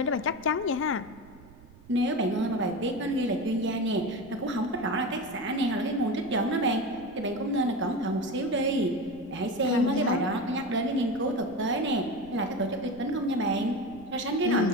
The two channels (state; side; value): noise; right; rumble, 22 dB below the sound